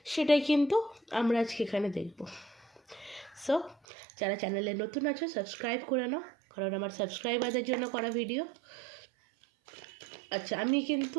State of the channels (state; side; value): drops out; left; at 3.8 s